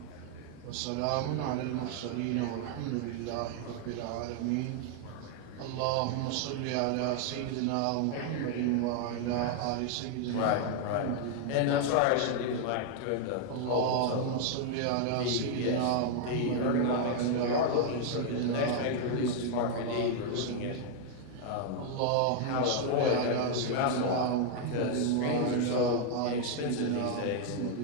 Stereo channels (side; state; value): both; different; correlation 0.00